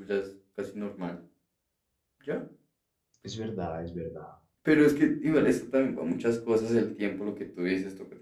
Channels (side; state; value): both; identical; correlation 1.00